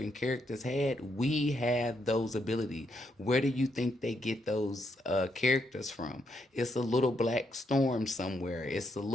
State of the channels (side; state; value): both; normal; correlation 0.77